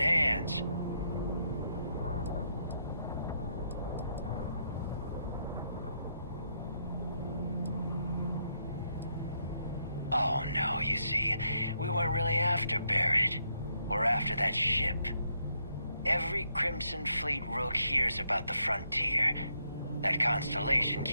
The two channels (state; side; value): inverted; both; correlation -0.77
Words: Oh no, you see, we weren't really after Barrett. We're after that ship. Every Crimson Fleet rook hears about the Frontier. That constellation